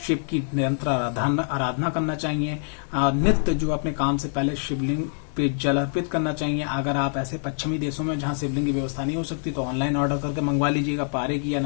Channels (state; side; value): silent; right; digital silence